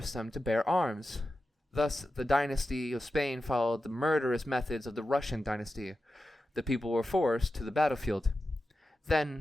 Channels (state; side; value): normal; both; correlation 0.92